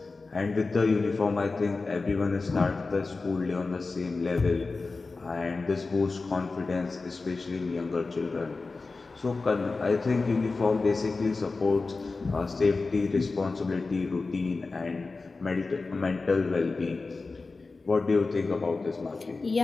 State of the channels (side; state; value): right; quieter; 3.8 dB